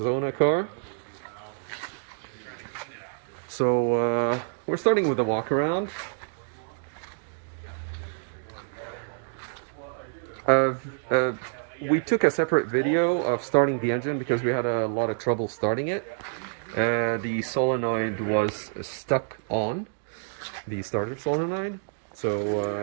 car. So we're starting with a walk around. We took a separate video of starting the engine because we had a lot of trouble starting it. The solenoid was stuck on the starter solenoid,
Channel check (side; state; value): left; silent; digital silence